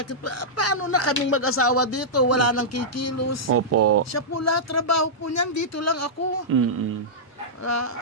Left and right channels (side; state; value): both; normal; correlation -0.12